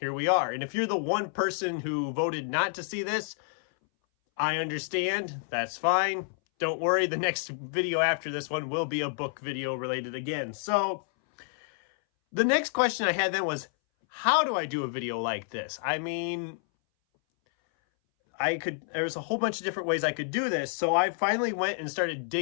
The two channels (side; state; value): right; silent; 59 dB below the other